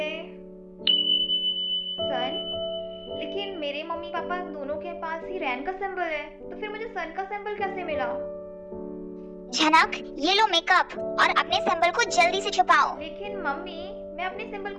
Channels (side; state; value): both; identical; correlation 1.00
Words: सन, लेकिन मेरे मम्मी पापा दोनों के पास ही रैन का सिंबल है, तो फिर मुझे सन का सिंबल कैसे मिला? झनक, ये लो मेकअप और अपने सिंबल को जल्दी से छुपाओ। लेकिन मम्मी, मैं अपने सिंबल